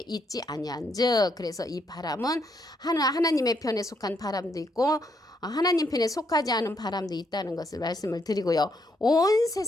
있지 아니한즉, 그래서 이 바람은 하나님의 편에 속한 바람도 있고 하나님 편에 속하지 않은 바람도 있다는 것을 말씀을 드리고요. 온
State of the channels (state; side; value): normal; both; correlation 0.75